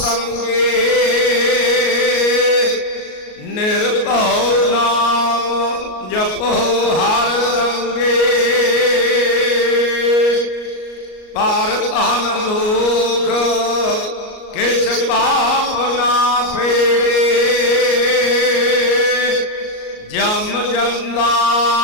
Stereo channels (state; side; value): late; right; 38 ms